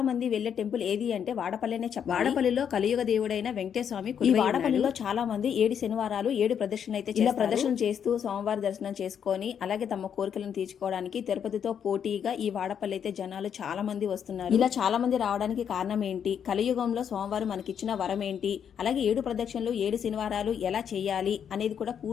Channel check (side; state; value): right; quieter; 8.1 dB